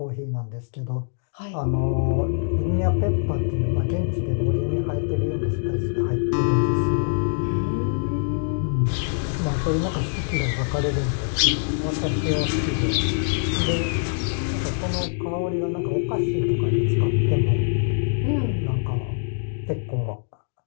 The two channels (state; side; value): silent; right; digital silence